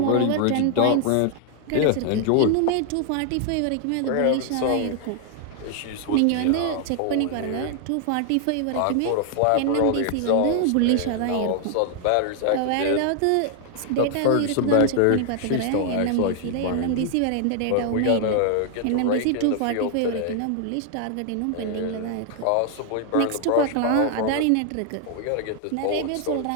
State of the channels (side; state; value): both; different; correlation 0.00